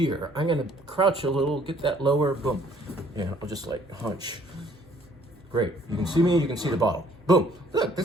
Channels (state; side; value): noise; right; hum, 29 dB below the sound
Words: I'm going to crouch a little, get that lower, boom. Yeah, I'll just like hunch. Great. You can see me, you can see the bottle. Boom. Look,